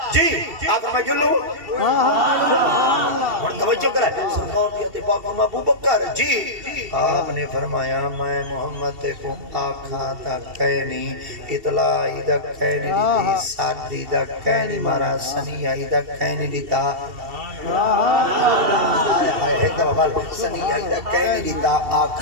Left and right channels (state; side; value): late; left; 2.7 ms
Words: جی آقا میں جلو سبحان اللہ اور توجہ کرے سرکار جی آتے پاک ابو بکر جی آپ نے فرمایا میں محمد کو آقا تا کہنی اطلاع دا کہنی دیتی ساتھی دا کہنی مارا سنیہ دا کہنی دیتا ایک دفعہ بال سنیہ دا کہنی دیتا